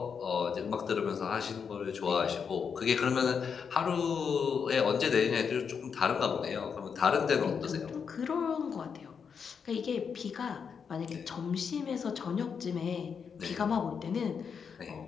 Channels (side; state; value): right; quieter; 6.5 dB